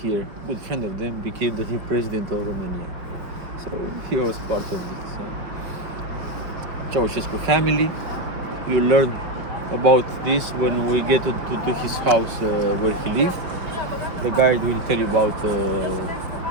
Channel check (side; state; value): left; late; 5.5 ms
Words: good friend of them, became the new president of Romania. So he was part of it. So. Ceausescu family. You learn about this when we get to his house where he lived. The guide will tell you about